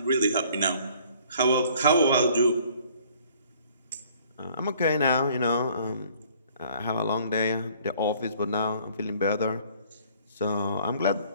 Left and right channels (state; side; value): inverted; both; correlation -0.57